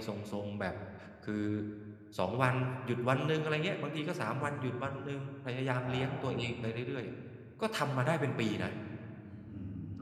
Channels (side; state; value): both; identical; correlation 1.00